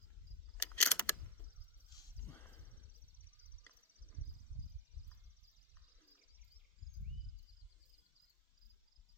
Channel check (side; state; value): both; normal; correlation 0.04